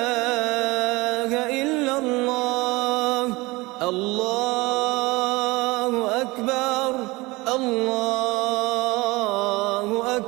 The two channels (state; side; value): quieter; left; 22.6 dB